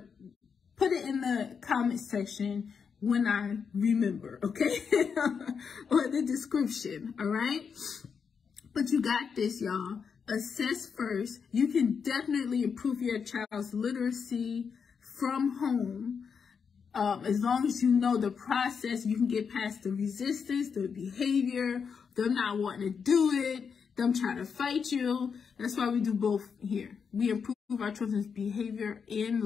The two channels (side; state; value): right; quieter; 6.3 dB